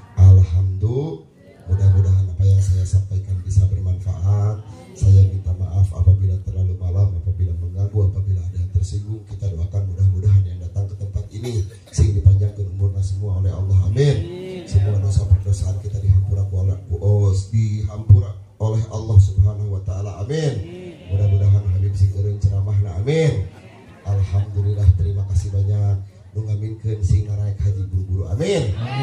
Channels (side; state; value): both; identical; correlation 1.00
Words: Alhamdulillah. Mudah-mudahan apa yang saya sampaikan bisa bermanfaat. Saya minta maaf apabila terlalu malam, apabila mengganggu, apabila ada yang tersinggung. Kita doakan mudah-mudahan yang datang ke tempat ini sing dipanjangkan umurnya semua oleh Allah. Amin. Semua dosa perdosaan kita dihampura oleh Allah Subhanahu wa taala. Amin. Mudah-mudahan Habib sing eureun ceramahna. Amin. Alhamdulillah, terima kasih banyak. Nu ngaminkeun sing naraek haji buru-buru. Amin.